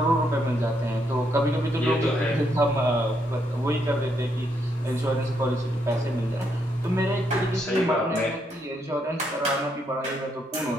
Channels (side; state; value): both; normal; correlation 0.76